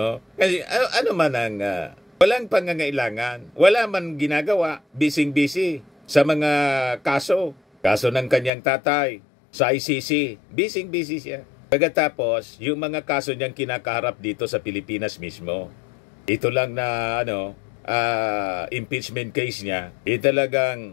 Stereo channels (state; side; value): drops out; right; at 8.5 s